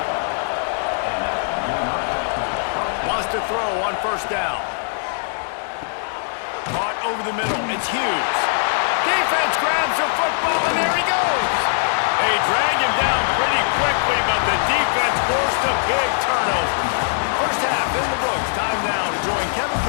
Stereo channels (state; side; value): silent; right; digital silence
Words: Wants to throw on 1st down. Caught over the middle. It's Hughes. Defense grabs the football, and there he goes. They drag him down pretty quickly, but the defense forced a big turnover. First half in the books. Time now to join Kevin